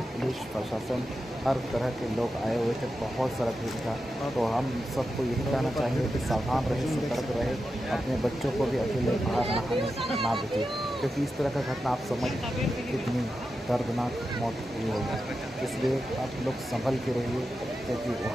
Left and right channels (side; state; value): both; normal; correlation 0.90